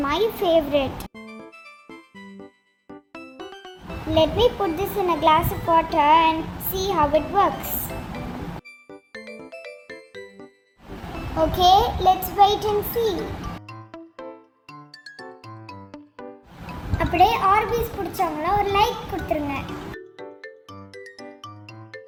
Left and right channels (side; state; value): both; identical; correlation 1.00